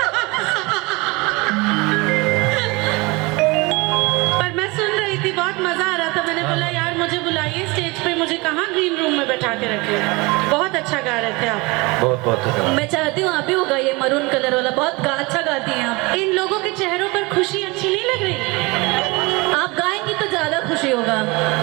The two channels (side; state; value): left; quieter; 25.3 dB